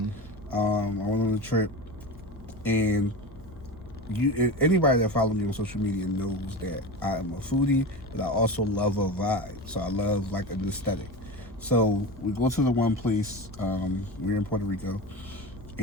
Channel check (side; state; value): both; normal; correlation 0.26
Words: I went on a trip, and anybody that follows me on social media knows that I am a foodie, but I also love a vibe. So I love like an aesthetic. So we go to the one place. We're in Puerto Rico,